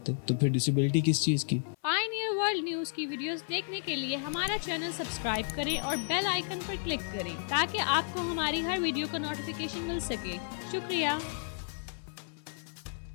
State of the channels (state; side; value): silent; right; 56 dB below the other